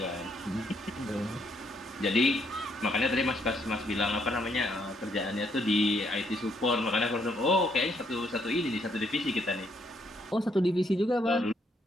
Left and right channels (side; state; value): both; normal; correlation 0.72